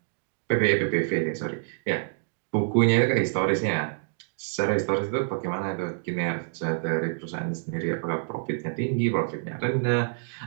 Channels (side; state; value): left; silent; digital silence